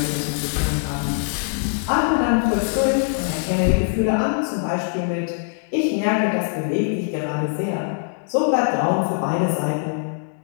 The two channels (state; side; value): silent; right; 58 dB below the other